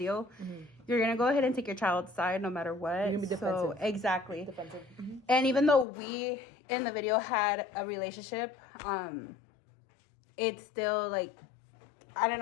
you're gonna go ahead and take your child's side no matter what. You're gonna be defensive. So exactly. Defensive. And even though we in the video had a relationship, it's still like, I don't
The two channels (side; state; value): right; drops out; at 5.9 s